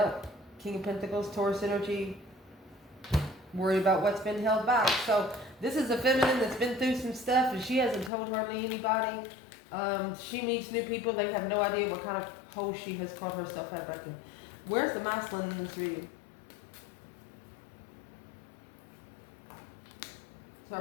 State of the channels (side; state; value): right; drops out; at 8.1 s